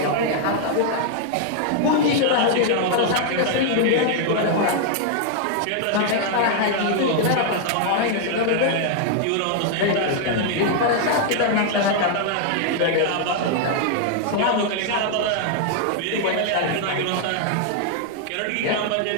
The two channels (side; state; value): both; different; correlation 0.00